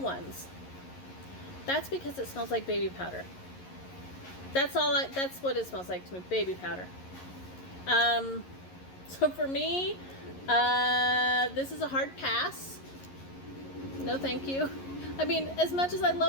That's because it smells like baby powder. That's what it smells like to me, baby powder. So for me, this is a hard pass. No thank you. I mean, as much as I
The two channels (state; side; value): late; right; 11 ms